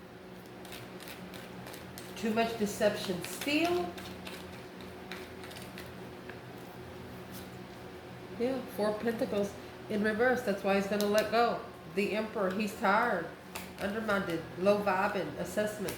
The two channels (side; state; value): both; identical; correlation 1.00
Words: Too much deception. Steal. Yeah, 4 Pentacles in reverse. That's why he's going to let go. The Emperor, he's tired, undermined, low vibing, assessments,